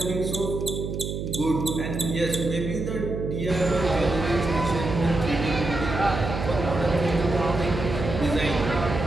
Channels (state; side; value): noise; right; hum, 5 dB below the sound